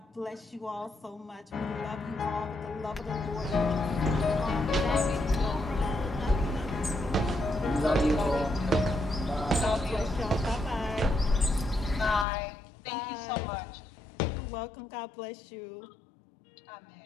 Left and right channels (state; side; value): drops out; right; at 12.2 s